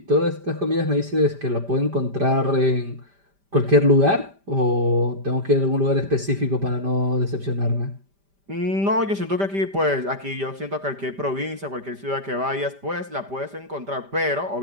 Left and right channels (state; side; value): late; left; 5.1 ms